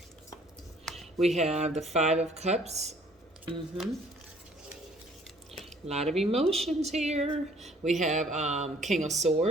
We have the 5 of Cups. A lot of emotions here. We have King of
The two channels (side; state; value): both; normal; correlation 0.58